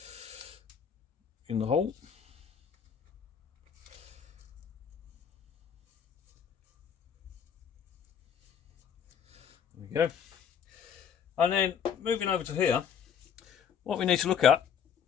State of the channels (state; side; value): quieter; right; 7.8 dB